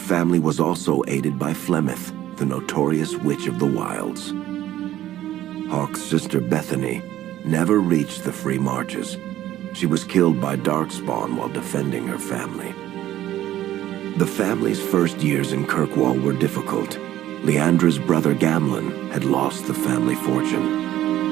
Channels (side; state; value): left; quieter; 13.4 dB